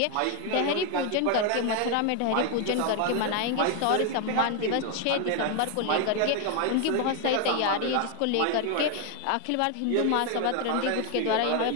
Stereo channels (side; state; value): both; different; correlation 0.01